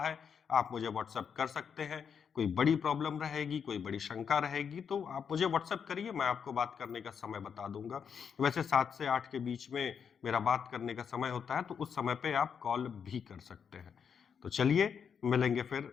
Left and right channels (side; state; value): right; quieter; 7.0 dB